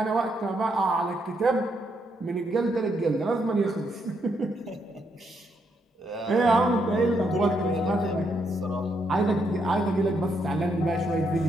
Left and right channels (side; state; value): both; normal; correlation 0.77